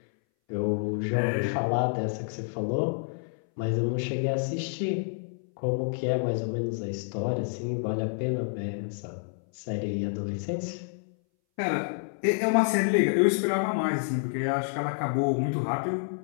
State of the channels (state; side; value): silent; right; 59 dB below the other